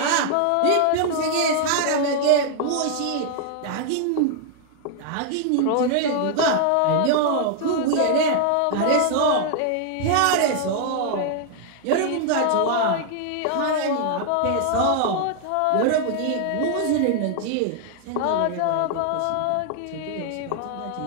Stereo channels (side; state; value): both; different; correlation -0.01